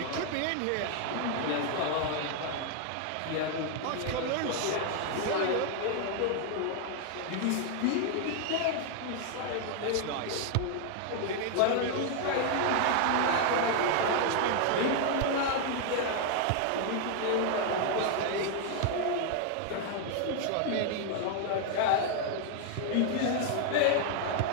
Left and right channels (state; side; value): different; both; correlation 0.00